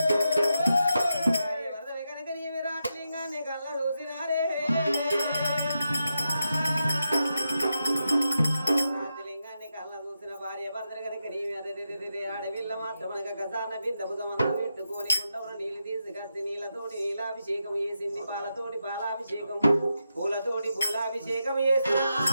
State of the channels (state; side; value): inverted; both; correlation -0.87